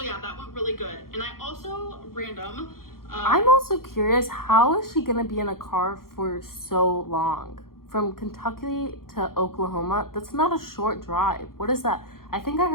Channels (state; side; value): late; right; 0.92 ms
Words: yeah, that went really good. And I also I'm also curious, how is she gonna be in a car for so long? From Kentucky to Oklahoma, that's not a short drive. What is that? I think I